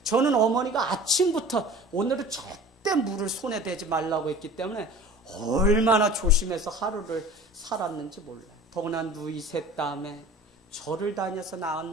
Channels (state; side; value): normal; both; correlation 0.42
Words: 저는 어머니가 아침부터 오늘은 절대 물을 손에 대지 말라고 했기 때문에 얼마나 조심해서 하루를 살았는지 몰라요. 더구나 누이 셋 다음에 절을 다녀서